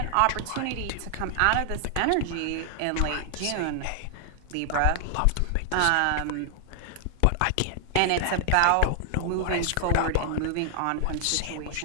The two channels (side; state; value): both; different; correlation 0.00